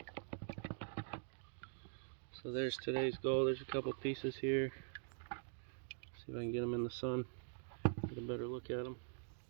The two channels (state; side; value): silent; left; digital silence